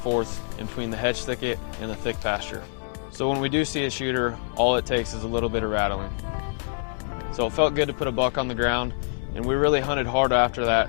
in between the hedge thicket and the thick pasture. So when we do see a shooter, all it takes is a little bit of rattling. So it felt good to put a buck on the ground, and we really hunted hard after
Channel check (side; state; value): right; silent; digital silence